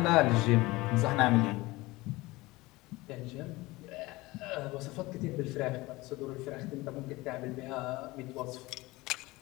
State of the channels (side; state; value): right; quieter; 20.9 dB